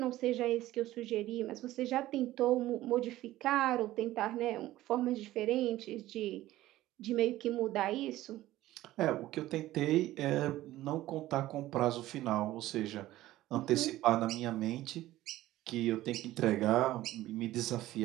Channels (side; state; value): left; quieter; 15.6 dB